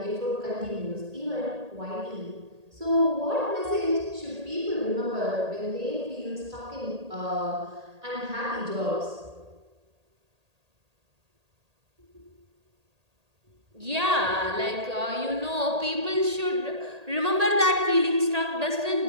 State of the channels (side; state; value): left; late; 1.8 ms